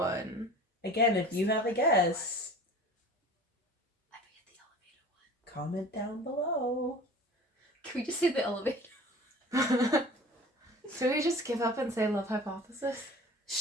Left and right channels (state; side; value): normal; both; correlation 0.42